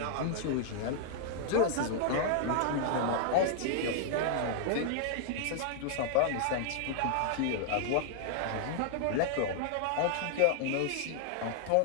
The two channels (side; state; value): both; different; correlation -0.01